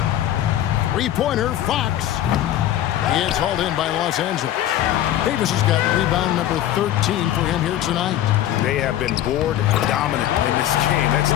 Three-pointer, Fox. It's hauled in by Los Angeles. Davis has got rebound number 13 for him here tonight. They have been board dominant in this game. That's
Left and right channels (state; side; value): quieter; right; 12.3 dB